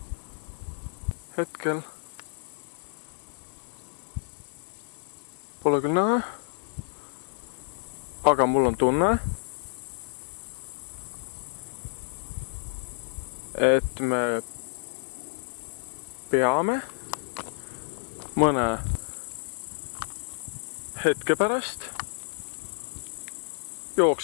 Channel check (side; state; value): right; silent; digital silence